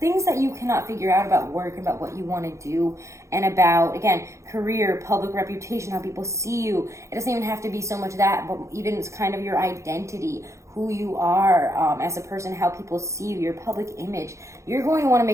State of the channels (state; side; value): late; left; 0.14 ms